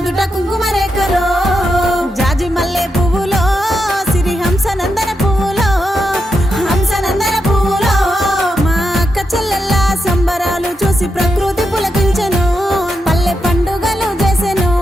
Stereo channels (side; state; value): both; normal; correlation 0.85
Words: కుంకుమ రేఖలో జాజి మల్లె పువ్వులో సిరి హంసనందన పువ్వులో హంసనందన పువ్వులో మా అక్క చెల్లెల్ల సంబరాలు చూసి ప్రకృతి పులకించెను పల్లె పండుగలు చేసెను